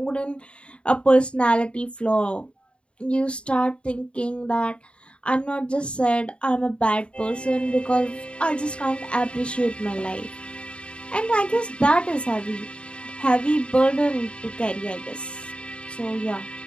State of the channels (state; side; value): late; right; 0.056 ms